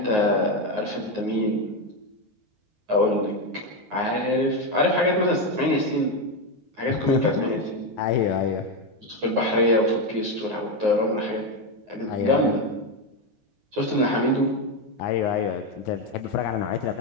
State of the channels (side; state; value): left; late; 9.5 ms